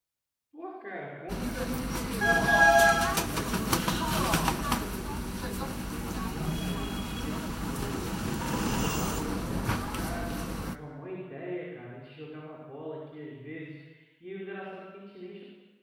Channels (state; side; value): identical; both; correlation 1.00